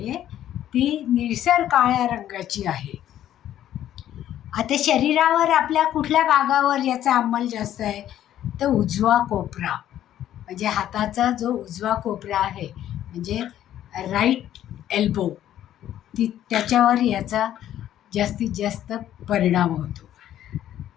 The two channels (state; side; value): quieter; right; 11.7 dB